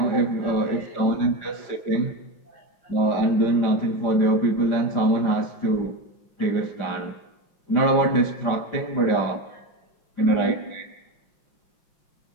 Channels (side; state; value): right; late; 5.7 ms